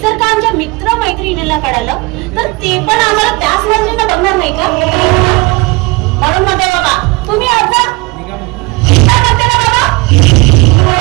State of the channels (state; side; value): quieter; left; 25.5 dB